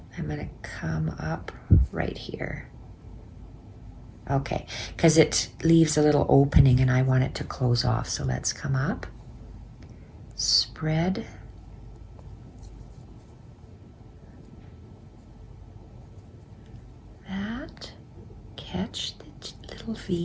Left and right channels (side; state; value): both; identical; correlation 1.00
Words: I'm going to come up right here. Okay, because it leaves a little opening and I want it to close off, so let's come up, spread, that, catch the little